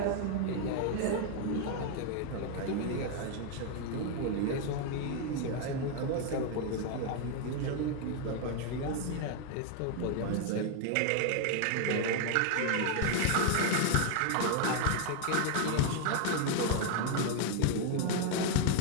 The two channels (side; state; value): both; different; correlation 0.00